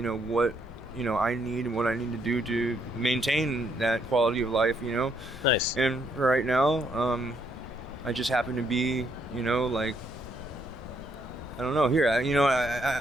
know, what, you know, I need and what I need to do to maintain that quality of life, you know. Nice. And for right now, I just happen to be, you know, like, I don't know. Here, I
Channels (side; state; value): both; normal; correlation 0.72